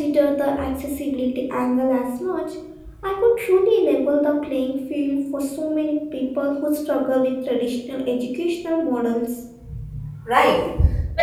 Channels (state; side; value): identical; both; correlation 1.00